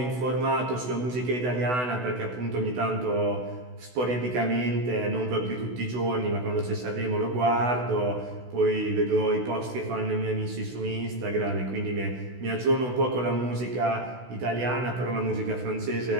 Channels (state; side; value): late; left; 16 ms